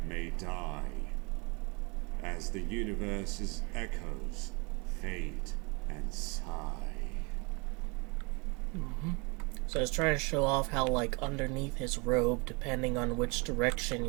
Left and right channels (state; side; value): quieter; left; 30.0 dB